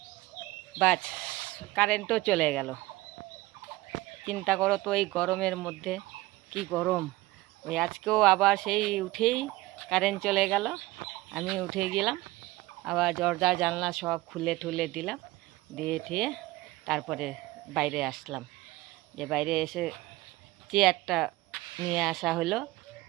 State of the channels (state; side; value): quieter; left; 19.0 dB